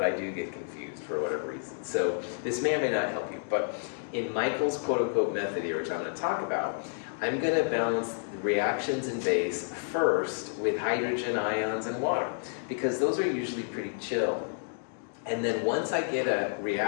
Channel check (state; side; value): silent; right; digital silence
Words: I do get confused for whatever reason. So this may or may not help you, but in Michael's quote-unquote method here, which I'm going to talk about, I'm going to balance the reactions in base first with hydrogen ions and water, because those are usually pretty chill. And then once I get a